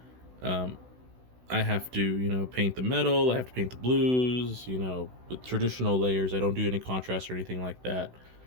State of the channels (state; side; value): late; left; 16 ms